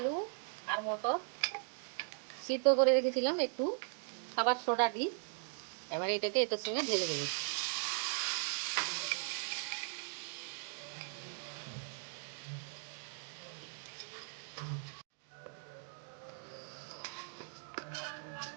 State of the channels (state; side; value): silent; left; 52 dB below the other